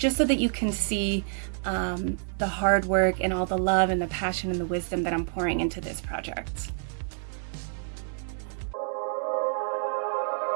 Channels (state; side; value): silent; left; 59 dB below the other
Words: so that you can see the hard work and all the love and the passion and the wisdom that I'm pouring into this project.